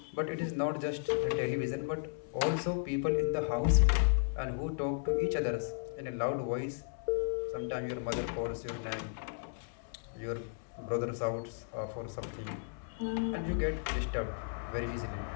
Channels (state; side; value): silent; right; 55 dB below the other